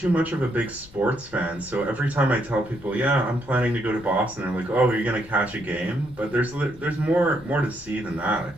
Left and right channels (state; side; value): noise; left; rumble, 21 dB below the sound